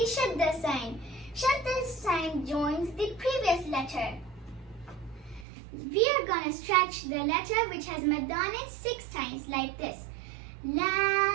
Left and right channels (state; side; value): drops out; left; at 5.5 s